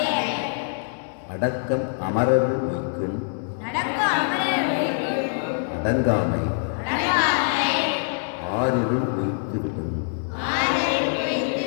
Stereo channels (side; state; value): right; silent; 62 dB below the other